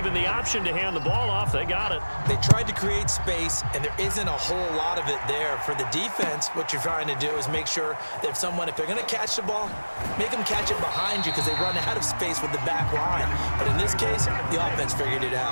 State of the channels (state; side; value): inverted; both; correlation -1.00